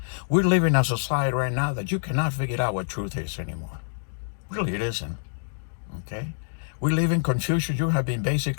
We're living in a society right now that you cannot figure out what truth is anymore. Really, it isn't. Okay? We live in confusion. You have been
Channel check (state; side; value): silent; right; digital silence